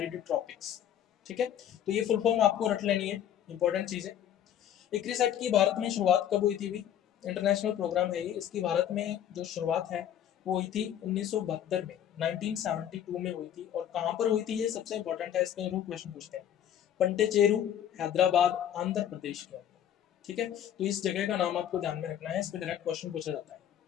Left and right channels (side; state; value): right; quieter; 10.3 dB